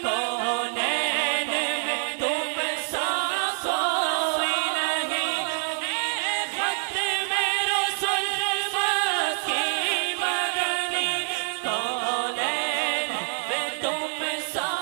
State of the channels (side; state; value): left; silent; 61 dB below the other